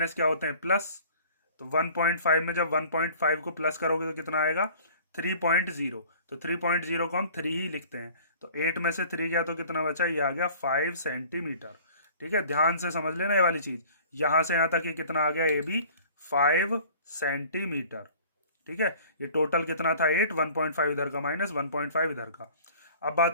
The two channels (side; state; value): both; inverted; correlation -0.49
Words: क्या होते हैं प्लस। तो 1.5 में जब 1.5 को प्लस करोगे तो कितना आएगा 3.0। तो 3.0 को हम 3 ही लिखते हैं। तो 8 में से 3 गया तो कितना बचा, ये आ गया 5 सेंटीमीटर। ठीक है, ध्यान से समझ लेना ये वाली चीज। यहां से यहां तक ये कितना आ गया ए बी 5 सेंटीमीटर। ठीक है, ये टोटल कितना था 8, 1.5 इधर का माइनस 1.5 इधर का। अब